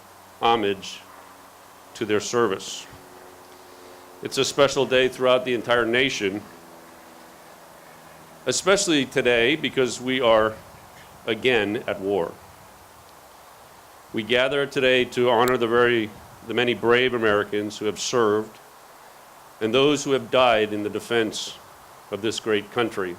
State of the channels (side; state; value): both; identical; correlation 1.00